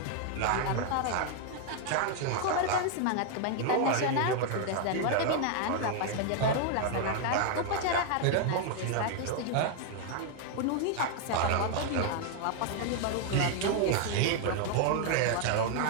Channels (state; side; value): different; both; correlation 0.00